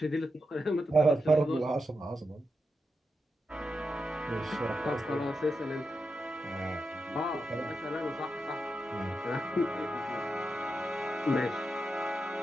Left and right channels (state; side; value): normal; both; correlation 0.87